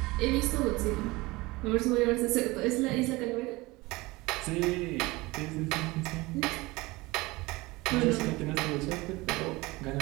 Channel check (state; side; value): quieter; left; 21.9 dB